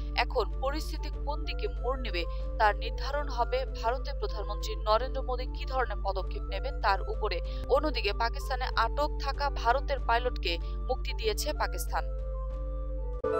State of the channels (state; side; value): identical; both; correlation 1.00